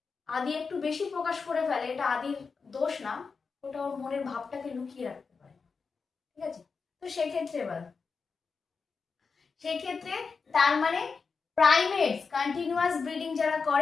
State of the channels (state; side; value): quieter; right; 5.0 dB